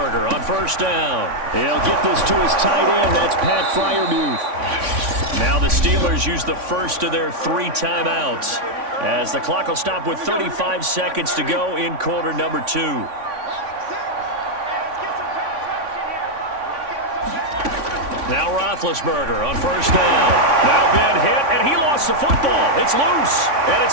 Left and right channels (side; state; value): left; late; 3.5 ms